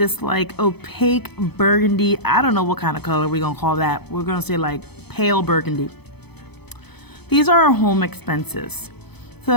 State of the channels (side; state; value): right; late; 0.98 ms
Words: like opaque burgundy, I don't know what kind of color we're gonna call that. We're gonna say like pale burgundy. These are our home expenses.